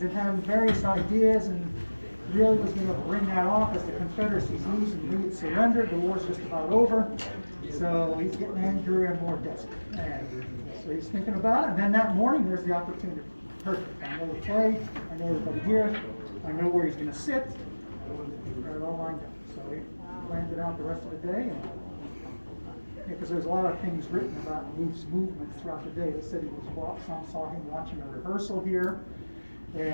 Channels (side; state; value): both; inverted; correlation -1.00